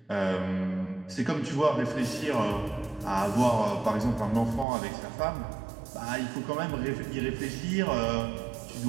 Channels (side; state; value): left; drops out; at 4.7 s